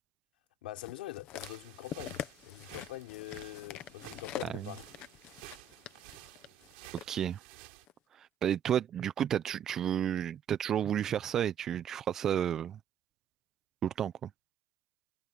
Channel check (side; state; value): left; quieter; 6.9 dB